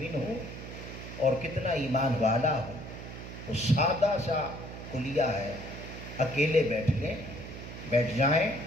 ہوں اور کتنا ایمان والا ہوں، تو سادہ سا کلیہ ہے، اکیلے بیٹھ جائیں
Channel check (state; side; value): noise; right; hum, 11 dB below the sound